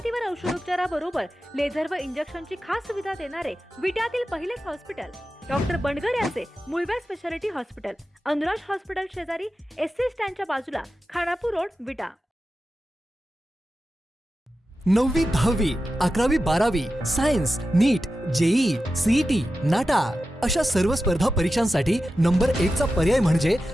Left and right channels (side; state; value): both; normal; correlation 0.92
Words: औषधोपचाराबरोबर लेझर व इंजेक्शनची खास सुविधा देणारे विट्यातील पहिलेच हॉस्पिटल डॉक्टर बंडगर यांचे मूळव्याध स्पेशालिटी हॉस्पिटल, अनुराज हॉस्पिटल शेजारी, एससी स्टँडच्या बाजूला, खानापूर रोड, विटा. 9वी 10वी 11वी 12वी science, NEET, JEE, CET, NATA अशा सर्व स्पर्धा परीक्षांसाठी नंबर 1 चा पर्याय म्हणजे